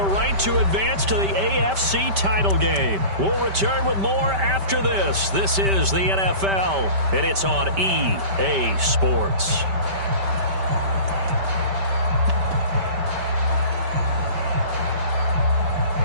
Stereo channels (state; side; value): late; left; 5.1 ms